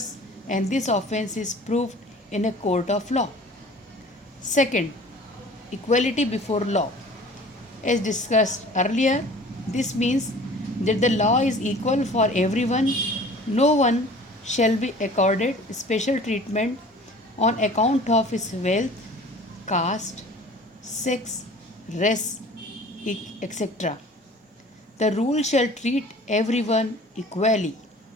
and this offense is proved in a court of law. Second, equality before law. As discussed earlier, this means that the law is equal for everyone. No one shall be accorded special treatment on account of his wealth, caste, sex, race, etc. The rule shall treat everyone equally.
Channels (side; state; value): both; normal; correlation 0.46